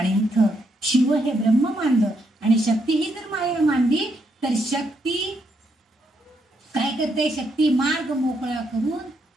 इथं शिव हे ब्रह्म मानलं आणि शक्ती ही जर माया मानली तर शक्ती काय करते, शक्ती मार्ग मोकळा करून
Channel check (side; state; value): both; normal; correlation 0.77